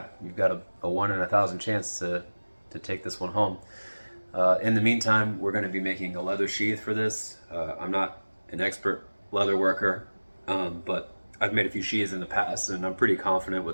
you've got a 1 in 1,000 chance to take this one home. In the meantime, we're going to be making a leather sheath for this. I'm not an expert leather worker, but I've made a few sheaths in the past and I'm pretty confident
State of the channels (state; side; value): inverted; both; correlation -1.00